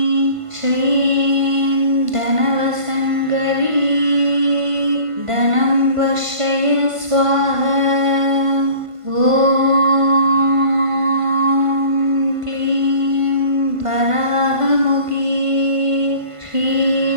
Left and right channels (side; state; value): left; late; 1.5 ms